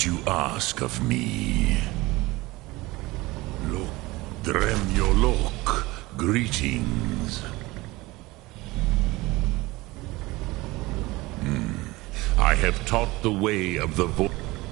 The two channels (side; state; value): left; quieter; 20.9 dB